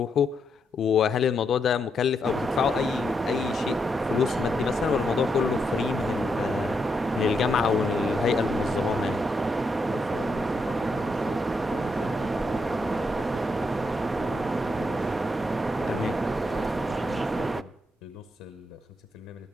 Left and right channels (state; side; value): normal; both; correlation 0.80